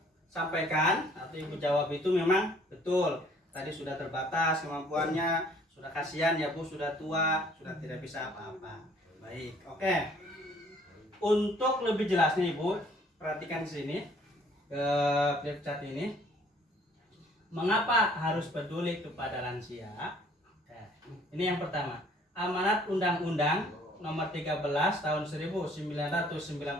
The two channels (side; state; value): both; normal; correlation 0.58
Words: sampaikan atau Ibu jawab itu memang betul. Tadi sudah terbatas kemampuannya, sudah kasihan ya Bu, sudah tua, sudah tidak bisa apa-apa. Baik, oke. Untuk lebih jelasnya Ibu, perhatikan di sini ke flip chart ini. Mengapa harus peduli kepada lansia? Ini yang pertama. Amanat Undang-Undang Nomor 13 Tahun 1998